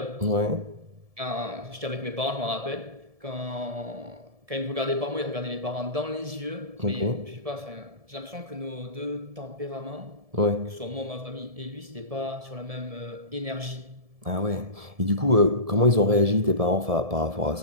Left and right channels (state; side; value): late; left; 1.7 ms